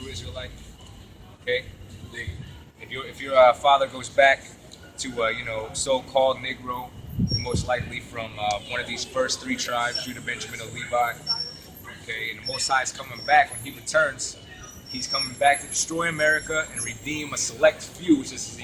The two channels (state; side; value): identical; both; correlation 1.00